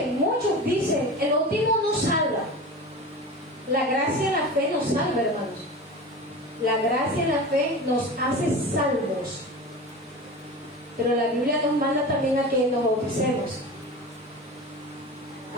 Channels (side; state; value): both; normal; correlation 0.31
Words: dicen, el bautismo no salva. La gracia y la fe nos salva, hermanos. La gracia y la fe nos hace salvos. Pero la Biblia nos manda también a que nos bauticemos.